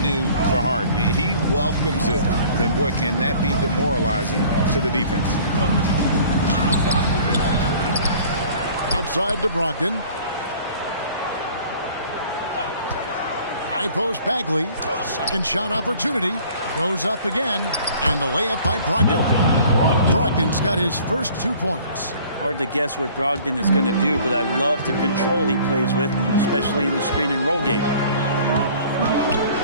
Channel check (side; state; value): both; inverted; correlation -0.51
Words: new for Harden. He welcomes it. And, boy, can that be demoralizing to the defense. Outside to Brogdon. High post Bagley. Second shot opportunity. Goes up again. And the layup by Brogdon. Brogdon's got his first 2 points. Hard to guess what Brogdon is going to do, but I love the control he plays with, especially in the screen and roll game.